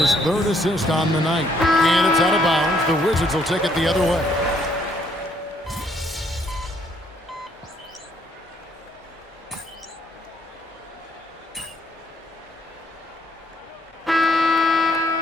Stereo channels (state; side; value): normal; both; correlation 0.68